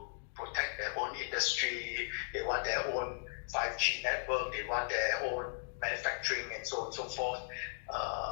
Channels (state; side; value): silent; right; digital silence